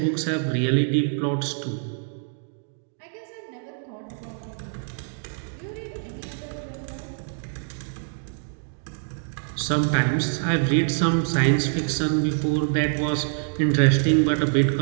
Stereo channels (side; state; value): left; silent; digital silence